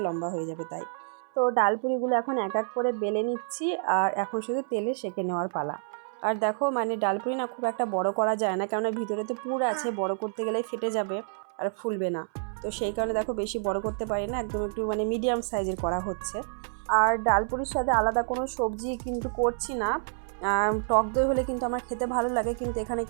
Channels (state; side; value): silent; left; 59 dB below the other